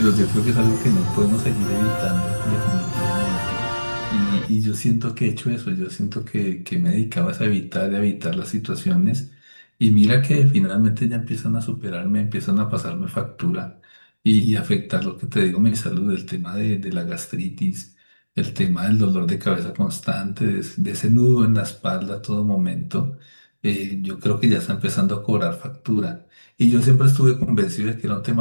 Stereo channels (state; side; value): inverted; both; correlation -1.00